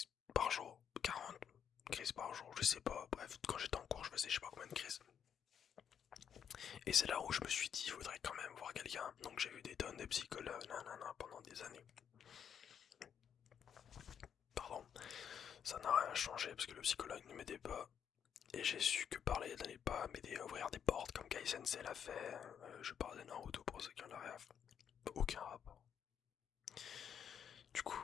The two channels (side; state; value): right; quieter; 8.2 dB